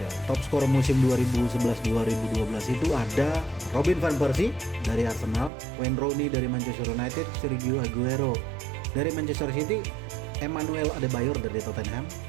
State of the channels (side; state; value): left; drops out; at 5.5 s